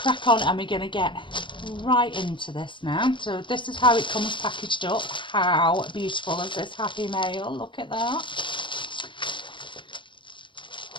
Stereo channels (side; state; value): right; late; 0.24 ms